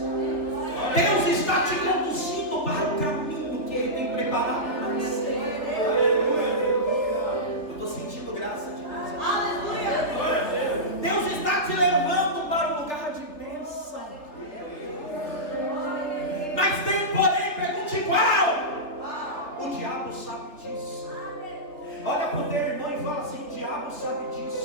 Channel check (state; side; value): late; right; 3.3 ms